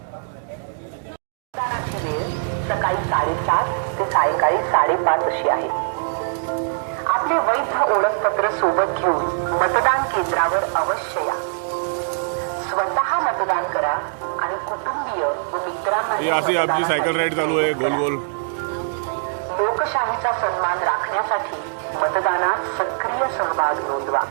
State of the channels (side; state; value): left; silent; digital silence